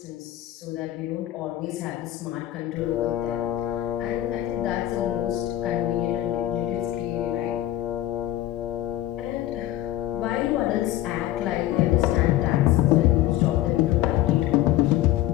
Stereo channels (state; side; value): quieter; right; 14.3 dB